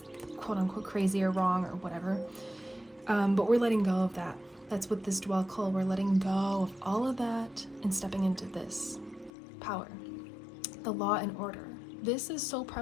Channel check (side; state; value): right; drops out; at 9.3 s